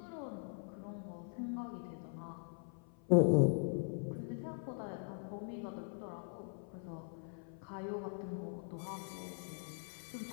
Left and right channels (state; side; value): silent; right; 50 dB below the other